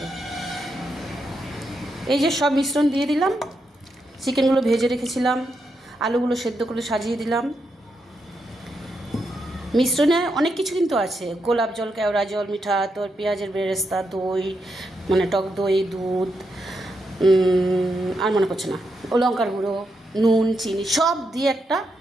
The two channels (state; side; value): normal; both; correlation 0.83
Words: এই যে সব মিশ্রণ দিয়ে দিলাম, চিকেনগুলো ভেজে রেখেছিলাম, আলুগুলো সেদ্ধ করে সাজিয়ে দিলাম। মিশ্রণে অনেক কিছু কিন্তু আছে, গোলাপ জল, কেওড়া জল, মিঠা আতর, পেঁয়াজের বেরেস্তা, দই, মানে টক দই, দুধ, আর মনে পড়ছে না, ও লঙ্কার গুঁড়ো, নুন, চিনি সব দিয়ে একটা